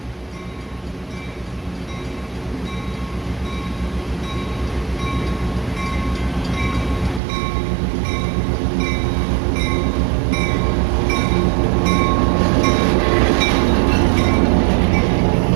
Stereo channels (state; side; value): drops out; left; at 7.2 s